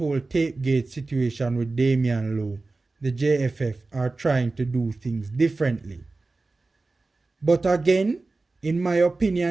Tapegate situation with Damian Lowe, the JFF are trying to do things differently. But again, in my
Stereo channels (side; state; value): left; quieter; 3.5 dB